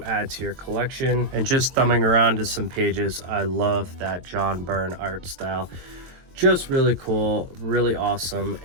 add to your collection. And just thumbing around to some pages, I love that John Byrne art style. Just really cool, really awesome,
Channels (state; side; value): late; left; 22 ms